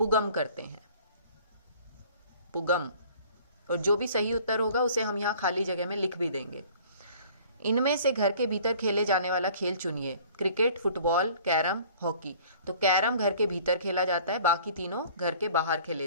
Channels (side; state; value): both; inverted; correlation -0.51